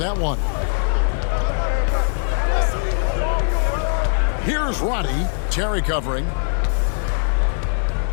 one. Here's Roddy. Terry covering.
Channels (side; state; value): right; silent; digital silence